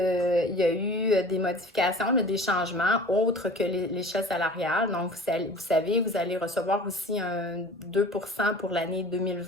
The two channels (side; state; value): both; normal; correlation 0.42